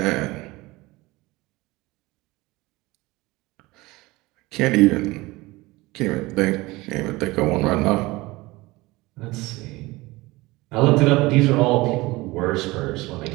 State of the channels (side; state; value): left; quieter; 21.1 dB